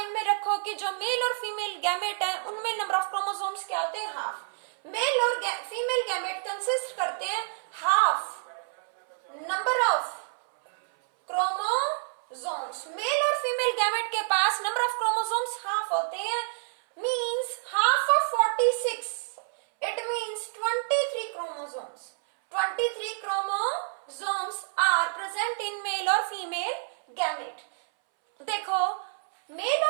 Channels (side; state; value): left; silent; 59 dB below the other